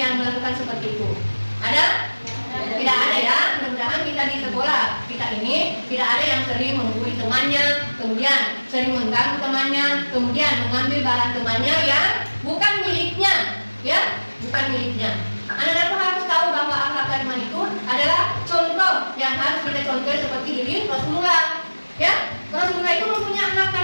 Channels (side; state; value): both; inverted; correlation -1.00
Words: melakukan seperti itu? Ada? Tidak ada ya. Mudah-mudahan kita di sekolah kita ini tidak ada yang sering menggurui temannya, kemudian sering mengganggu temannya, kemudian mengambil barang temannya yang bukan miliknya, ya, bukan miliknya. Anak-anakku harus tahu bahwa akhlak karimah itu adalah contoh yang harus kita contoh seperti diri Rasulullah. Ya, Rasulullah itu mempunyai akhlak